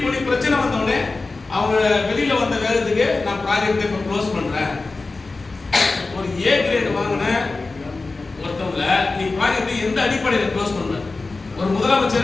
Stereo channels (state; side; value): quieter; right; 3.6 dB